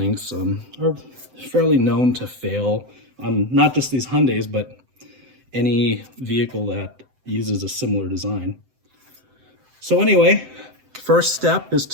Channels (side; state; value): left; late; 7.8 ms